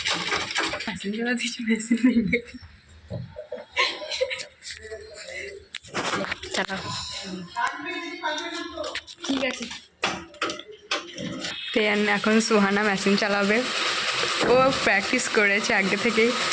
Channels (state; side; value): identical; both; correlation 1.00